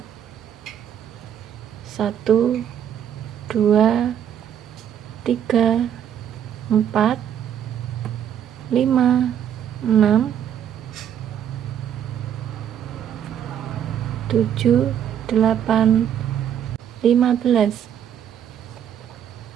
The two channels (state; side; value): quieter; left; 9.4 dB